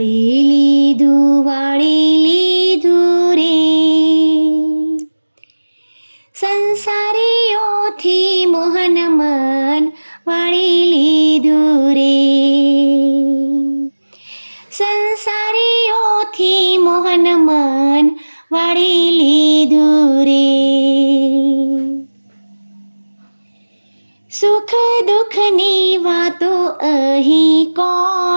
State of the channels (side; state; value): both; inverted; correlation -1.00